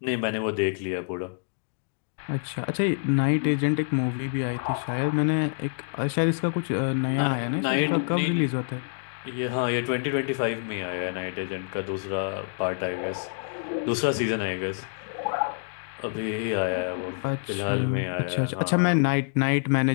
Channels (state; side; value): silent; right; digital silence